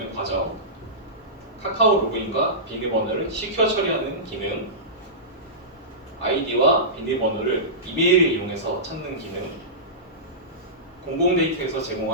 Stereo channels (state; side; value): normal; both; correlation -0.19